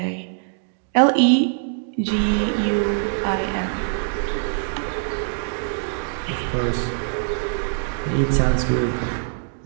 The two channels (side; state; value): left; silent; 63 dB below the other